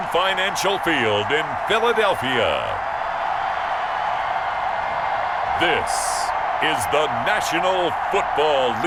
Financial Field in Philadelphia, this is the National Football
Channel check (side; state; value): both; identical; correlation 1.00